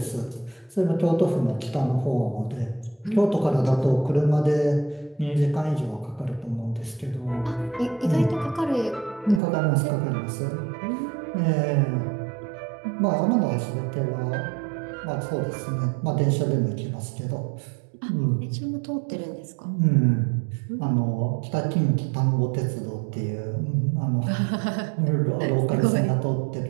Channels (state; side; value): drops out; left; at 9.4 s